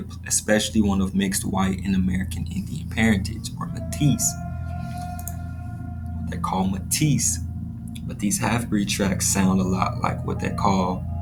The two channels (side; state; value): both; identical; correlation 1.00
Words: especially one of mixed white and American Indian parentage, or Métis. They're called Métis. But these half-breed tracts sound a lot like what they call